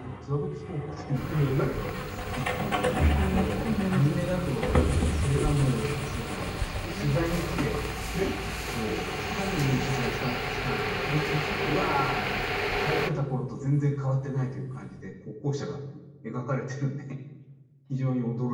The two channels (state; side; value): identical; both; correlation 1.00